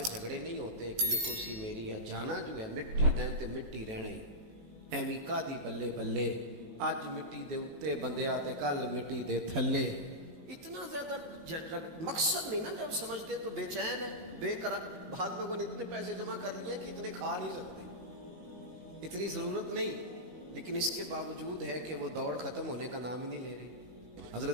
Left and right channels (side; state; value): left; late; 18 ms